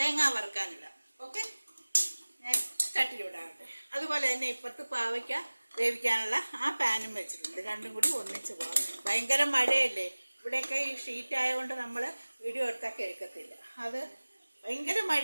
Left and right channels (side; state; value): both; inverted; correlation -1.00